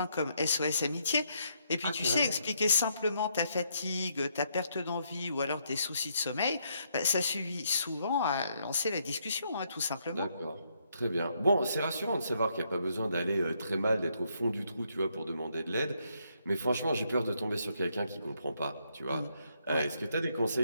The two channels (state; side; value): inverted; both; correlation -0.75